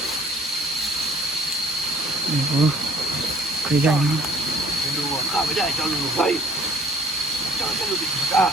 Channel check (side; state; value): both; normal; correlation 0.54